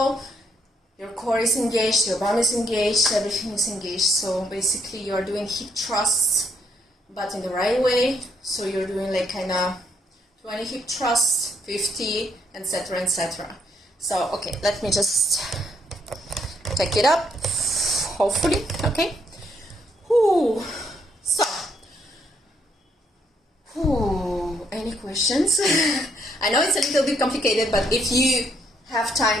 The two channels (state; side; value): normal; both; correlation 0.72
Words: your core is engaged, your bum is engaged, everything is engaged. So basically you are doing hip thrusts, but in the right way. So you're doing like kind of 20 hip thrusts, 50, etc., etc. So okay, let me just take it up, hopefully. Okay. So, any questions? I know it's a little bit complicated, but if you have